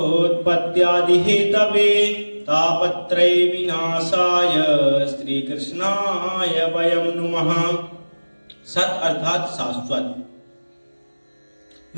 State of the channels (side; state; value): both; inverted; correlation -1.00